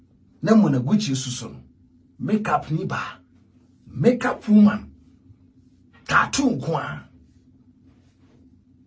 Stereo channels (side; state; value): both; identical; correlation 1.00